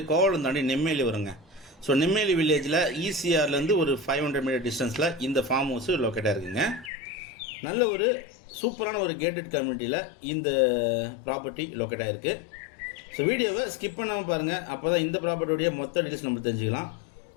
கோவளம் தாண்டி நெம்மேலி வருங்க. ஸோ நெம்மேலி வில்லேஜில் இசிஆர்லேருந்து ஒரு 500 மீட்டர் டிஸ்டன்ஸில் இந்த ஃபார்ம் ஹவுஸ் லொக்கேட்டாக இருக்குங்க. நல்ல ஒரு சூப்பரான ஒரு கேட்டட் கம்யூனிட்டியில் இந்த ப்ராப்பர்ட்டி லொக்கேட்டாக இருக்குது. ஸோ வீடியோவை ஸ்கிப் பண்ணாமல் பாருங்கள், அப்போ தான் இந்த ப்ராப்பர்ட்டியோடைய மொத்த டீட்டெயில்ஸ் நம்ம தெரிஞ்சுக்கலாம்.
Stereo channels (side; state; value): right; drops out; at 6.9 s